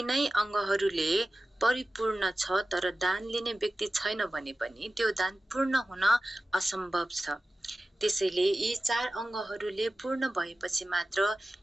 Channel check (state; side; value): normal; both; correlation 0.95